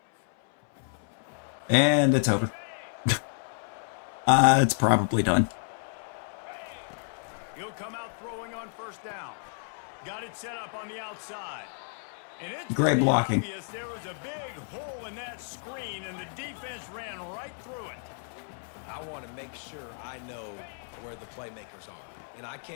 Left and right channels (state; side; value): silent; right; 57 dB below the other